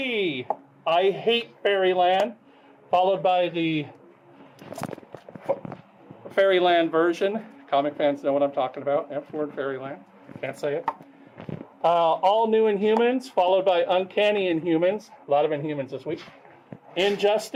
I Hate Fairyland, followed by the Fairyland version. Comic fans know what I'm talking about. F-word Fairyland. Can't say it. All New Inhumans, followed by Uncanny Inhumans. A lot of Inhumans this week.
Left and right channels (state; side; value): identical; both; correlation 1.00